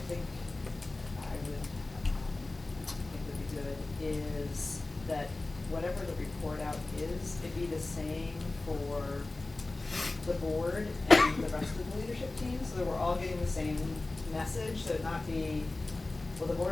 would be good is that whatever the report out is, it be the same for the board and the rest of the leadership team, so that we're all getting the same message, so it not be, well, the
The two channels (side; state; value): right; quieter; 3.1 dB